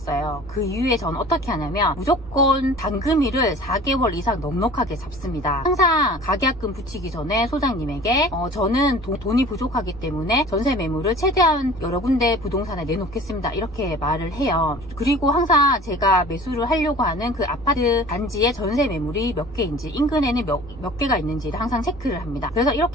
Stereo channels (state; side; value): normal; both; correlation 0.44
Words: 그 이후에 저는 어떻게 하냐면 무조건 잔금일을 4개월 이상 넉넉하게 잡습니다. 항상 가계약금 붙이기 전에 소장님에게 저는 돈이 부족하기 때문에 전세 매물을 최대한 여러 군데 부동산에 내놓겠습니다, 이렇게 말을 해요. 그리고 항상 제가 매수를 하려고 하는 그 아파트 단지의 전세 매물이 몇 개인지, 인근에는 몇 개가 있는지를 항상 체크를 합니다. 그래서